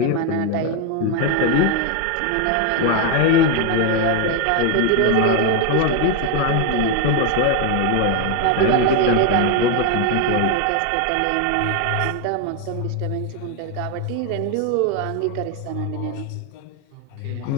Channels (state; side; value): different; both; correlation 0.01